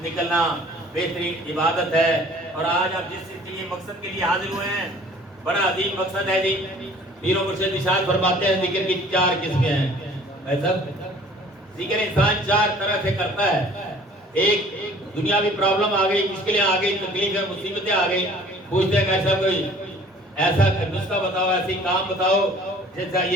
نکلنا بہترین عبادت ہے. اور آج آپ جس مقصد کے لیے حاضر ہوئے ہیں بڑا عظیم مقصد ہے جی. پیر و مرشد ارشاد فرماتے ہیں ذکر کی 4 قسمیں ہیں. ذکر انسان 4 طرح سے کرتا ہے. ایک دنیاوی پرابلم آ گئی, مشکلیں آ گئی, تکلیفیں مصیبتیں آ گئی, پوچھتے ہیں کہ ایسا کوئی ایسا نسخہ بتاؤ, ایسی کام بتاؤ جیسا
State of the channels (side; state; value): both; normal; correlation 0.51